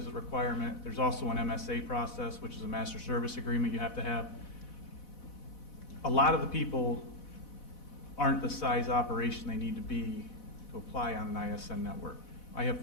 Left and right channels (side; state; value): right; late; 4.1 ms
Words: a requirement. There's also an MSA process, which is a master service agreement you have to have. A lot of the people aren't the size operation they need to be to apply on an ISN network. I have